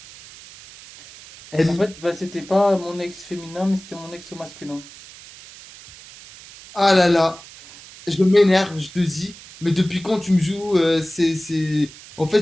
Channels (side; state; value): right; noise; hiss, 19 dB below the sound